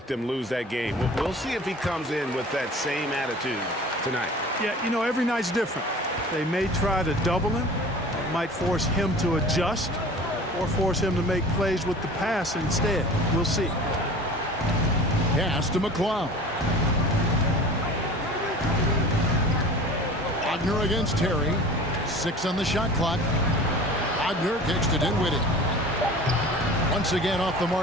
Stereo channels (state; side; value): normal; both; correlation 0.41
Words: them lose that game. We'll see if he comes in with that same attitude tonight. Yeah, you know, every night's different. They may try to double him, might force him to adjust, or force him to make plays with the pass instead. We'll see. Pass to McCloud. Wagner against Terry. 6 on the shot clock. Wagner kicks to Dinwiddie. Once again off the